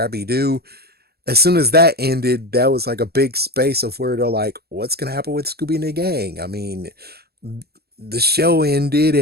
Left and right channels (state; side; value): late; left; 0.46 ms